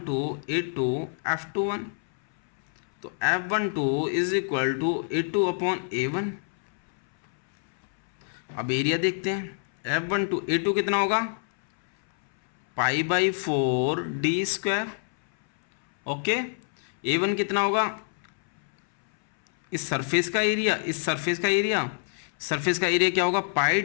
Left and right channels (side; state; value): right; silent; 61 dB below the other